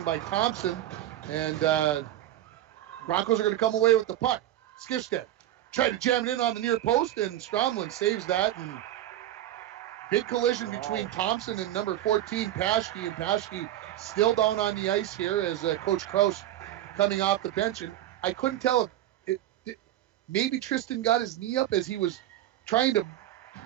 by Thompson. And Broncos are going to come away with the puck. Skifstead tried to jam it in on the near post, and Stromland saves that. And big collision between Thompson and number 14, Paschke. And Paschke still down on the ice here as Coach Kraus coming off the bench. And I couldn't tell if maybe Tristan got his knee up as he was trying to.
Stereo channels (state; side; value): quieter; left; 13.3 dB